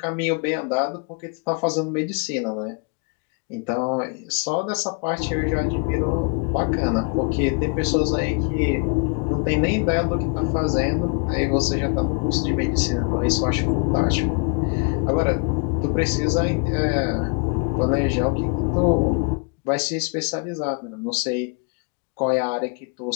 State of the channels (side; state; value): right; quieter; 35.2 dB